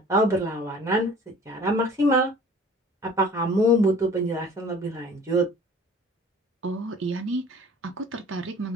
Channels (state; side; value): normal; both; correlation 0.48